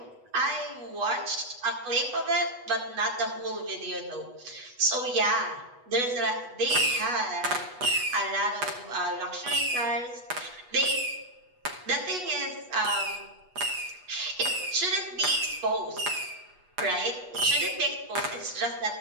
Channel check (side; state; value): left; late; 8.2 ms